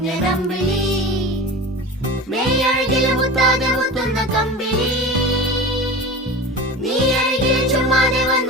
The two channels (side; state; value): both; normal; correlation 0.32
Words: മേയഴകിൽ മുത്താതെ മുത്തുന്ന കമ്പിളി നീ അഴകിൽ ചുമ്മാതെ